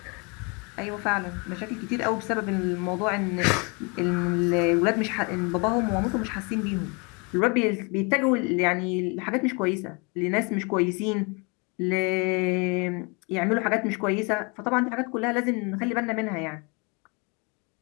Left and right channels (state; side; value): quieter; right; 31.4 dB